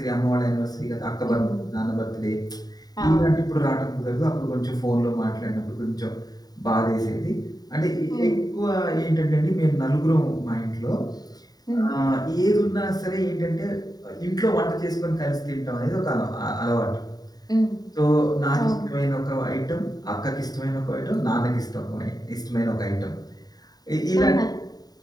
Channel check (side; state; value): right; late; 0.19 ms